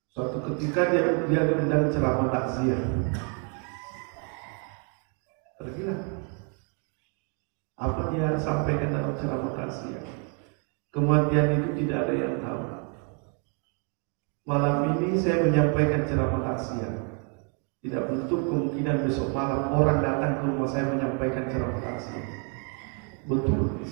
Suatu ketika dia diundang ceramah takziah. Pergilah. Apa dia sampaikan dalam ceramah takziah? Kematian itu tidak ada yang tahu. Malam ini saya menyampaikan ceramah takziah. Tidak menutup kemungkinan besok malam orang datang ke rumah saya menyampaikan ceramah takziah. Betul,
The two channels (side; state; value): left; quieter; 38.9 dB